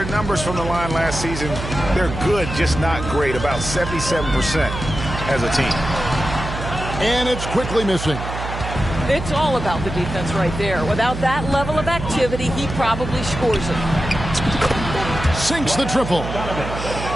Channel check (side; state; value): right; noise; hum, 7 dB below the sound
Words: numbers from the line last season, they're good, just not great. About 77% as a team. And it's quickly missing. It's all about the defense right there. Without that level of activity, he probably scores it. Sinks the triple.